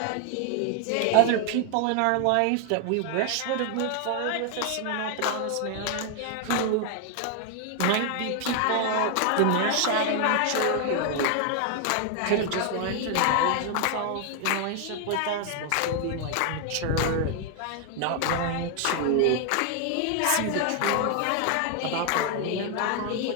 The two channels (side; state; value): both; different; correlation 0.00